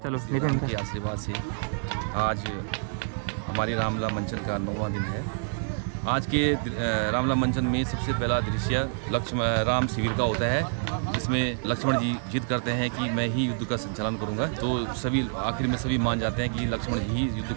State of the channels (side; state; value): left; silent; digital silence